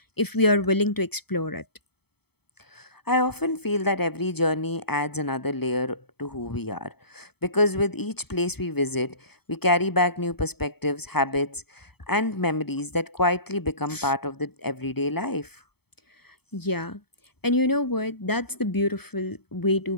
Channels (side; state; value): right; late; 0.97 ms